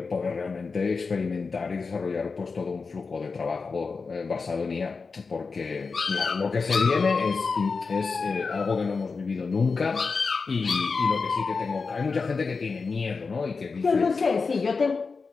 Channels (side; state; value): right; quieter; 4.6 dB